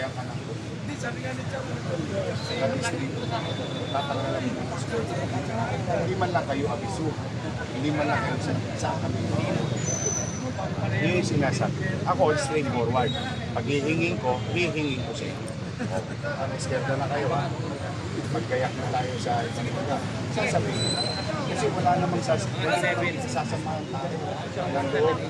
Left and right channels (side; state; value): both; identical; correlation 1.00